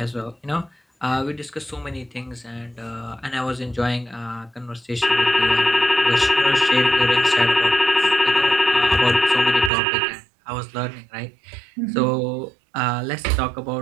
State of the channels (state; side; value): drops out; left; at 9.7 s